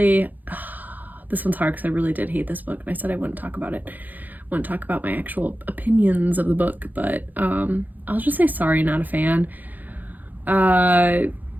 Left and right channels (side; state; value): left; late; 0.083 ms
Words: this one's hard because I really did hate this book, and I said I wouldn't talk about it. I wouldn't talk about my actual opinions of the book, but I'll just say sorry, not a fan.